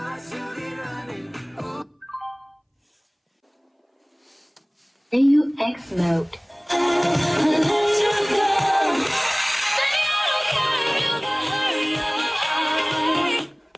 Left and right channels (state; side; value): identical; both; correlation 1.00